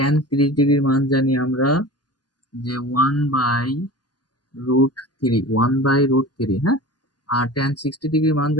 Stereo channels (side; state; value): right; late; 0.70 ms